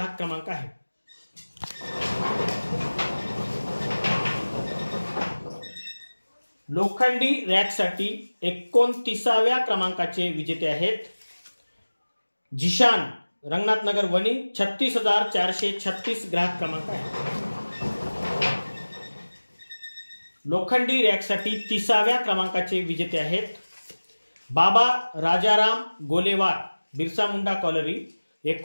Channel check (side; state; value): both; inverted; correlation -1.00